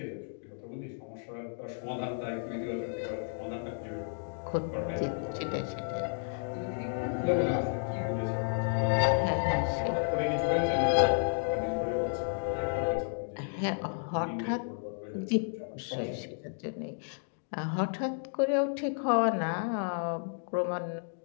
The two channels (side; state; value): right; silent; digital silence